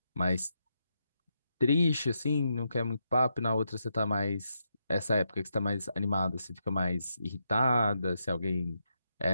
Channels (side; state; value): both; inverted; correlation -0.82